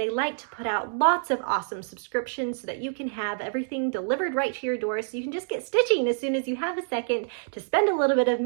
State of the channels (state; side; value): silent; left; digital silence